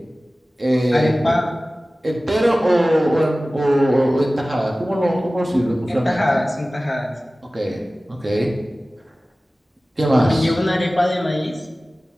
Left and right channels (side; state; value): both; normal; correlation 0.97